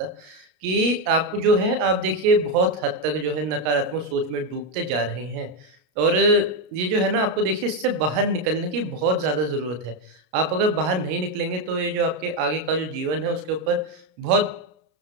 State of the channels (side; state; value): left; late; 33 ms